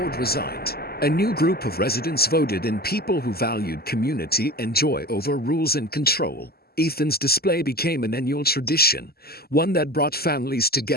resigned. A new group of residents voted in, people who valued community and joy over rules and control. Ethan's display became an annual tradition, one that brought families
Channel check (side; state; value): right; late; 0.45 ms